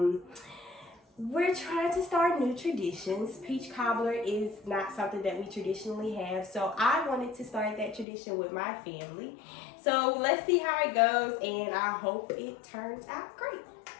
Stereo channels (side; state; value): right; drops out; at 8.1 s